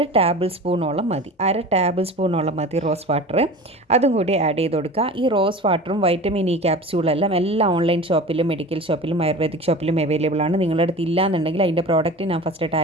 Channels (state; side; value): normal; both; correlation 0.35